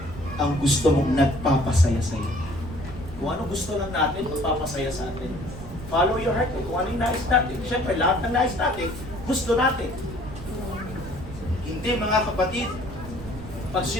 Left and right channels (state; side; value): noise; right; rumble, 13 dB below the sound